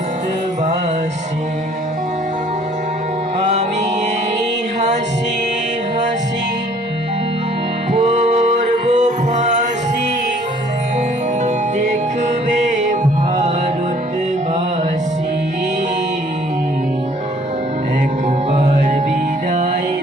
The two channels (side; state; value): both; normal; correlation 0.58